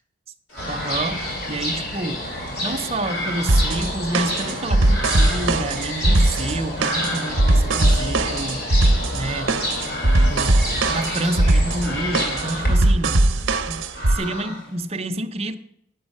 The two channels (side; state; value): both; normal; correlation 0.72